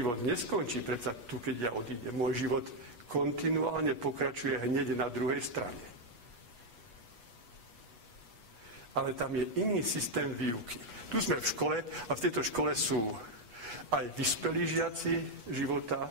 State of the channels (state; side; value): late; left; 8.3 ms